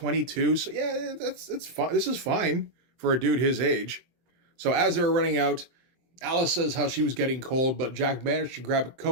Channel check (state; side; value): late; left; 23 ms